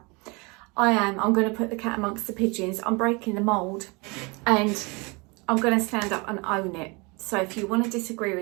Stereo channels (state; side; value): quieter; left; 28.5 dB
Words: I'm gonna put the cat amongst the pigeons. I'm breaking the mold and I'm gonna stand up and own it. So if you want to disagree